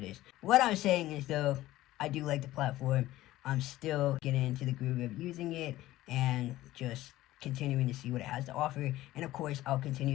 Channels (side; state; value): right; quieter; 15.9 dB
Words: is. What I'm saying is, though, I do like the platform. I'm still getting into the groove of using it and just continuing to see what it has to offer. And of course, I'll